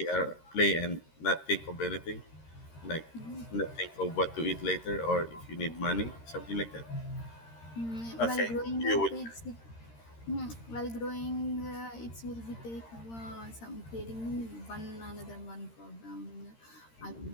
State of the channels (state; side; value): late; right; 13 ms